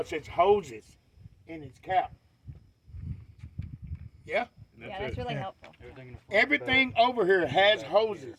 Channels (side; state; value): both; identical; correlation 1.00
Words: its hoses and its cap. Yeah? Yeah, that's really helpful. Everything over here has